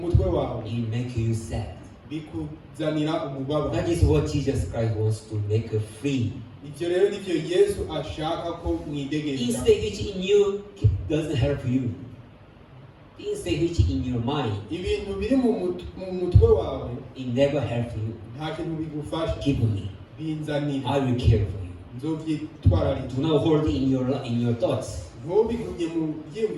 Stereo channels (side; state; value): both; identical; correlation 1.00